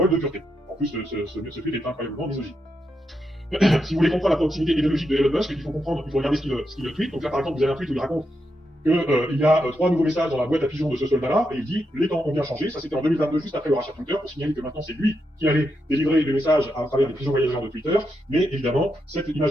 de pureté. En plus, ce tweet est incroyablement misogyne. Si vous voulez comprendre la proximité idéologique de Elon Musk, il faut regarder ce qu'il tweet. Donc là, par exemple, vous avez un tweet où il raconte qu'il y a 3 nouveaux messages dans la boîte à pigeons de ce soldat-là, et il dit « Les temps ont bien changé ». Ça, c'était en 2022, juste après le rachat de Twitter, pour signaler que maintenant, c'est lui qui allait délivrer les messages à travers les pigeons voyageurs de Twitter. Mais évidemment, cette image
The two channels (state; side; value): normal; both; correlation 0.84